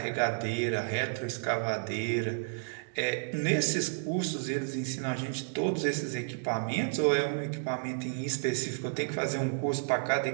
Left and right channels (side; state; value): left; silent; digital silence